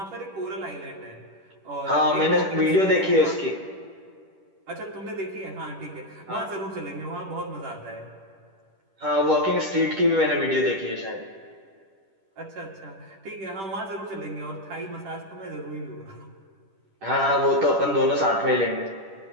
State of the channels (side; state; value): left; late; 10 ms